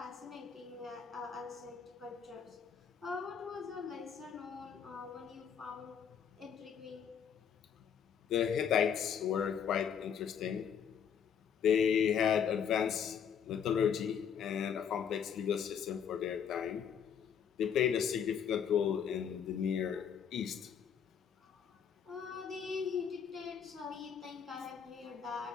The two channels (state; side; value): quieter; right; 7.8 dB